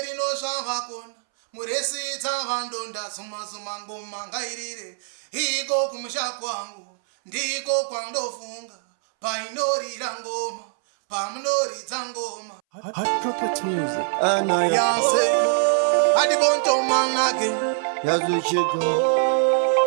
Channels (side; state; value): left; silent; 63 dB below the other